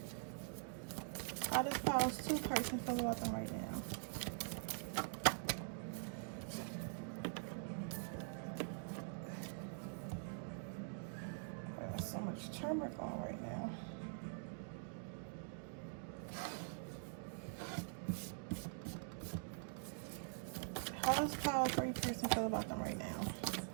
How does pile 2 person feel about them right now? There's so much turmeric on right now. How does pile 3 person feel about them right now?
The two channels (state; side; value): silent; left; digital silence